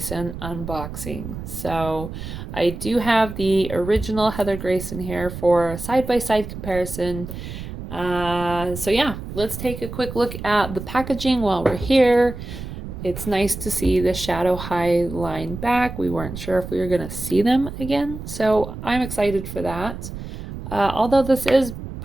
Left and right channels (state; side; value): noise; right; rumble, 9 dB below the sound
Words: unboxing. So, I do have the original Heather Grayson here for a side-by-side comparison. Yeah, let's take a quick look at the packaging while we're here. It's nice to see the Shadow High line back. We weren't sure if we were going to see them again, so I'm excited for that. Although this is